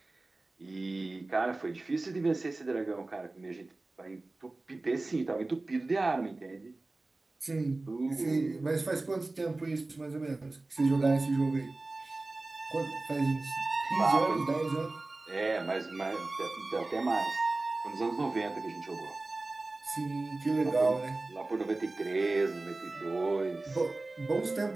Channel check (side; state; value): left; quieter; 3.1 dB